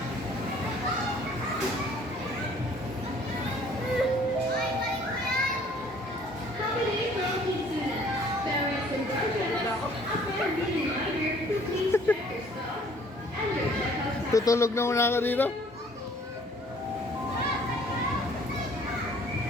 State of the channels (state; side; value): normal; both; correlation 0.57